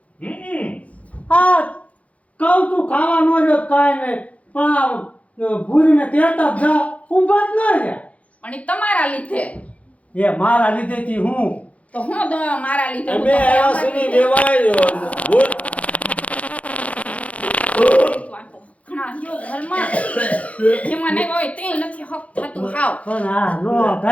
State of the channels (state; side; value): late; right; 0.066 ms